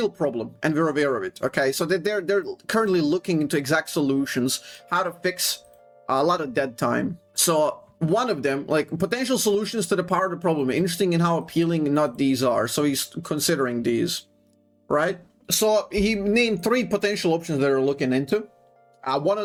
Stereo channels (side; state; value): both; identical; correlation 1.00